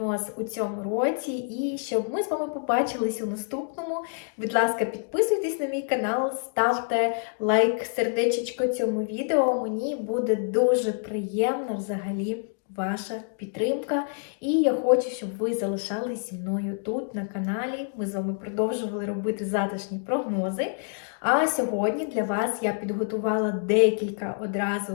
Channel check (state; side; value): silent; right; 60 dB below the other